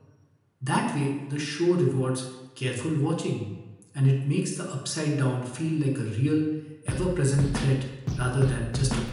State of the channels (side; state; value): both; identical; correlation 1.00